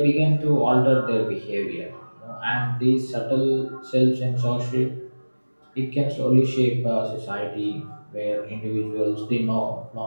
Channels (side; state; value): both; inverted; correlation -1.00